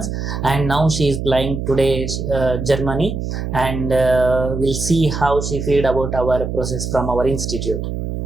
and now she is flying today Germany, and we'll see how she feel about our process from our institute.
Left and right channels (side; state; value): right; noise; hum, 4 dB below the sound